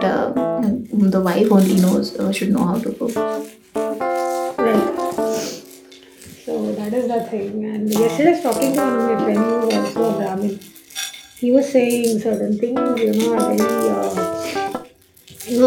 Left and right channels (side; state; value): both; identical; correlation 1.00